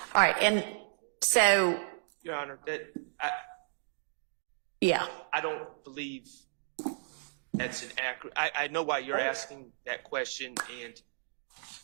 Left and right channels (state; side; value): silent; left; digital silence